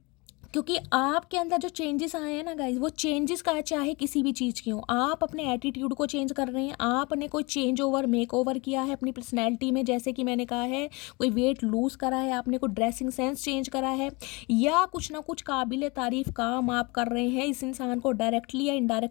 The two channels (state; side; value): quieter; right; 26.8 dB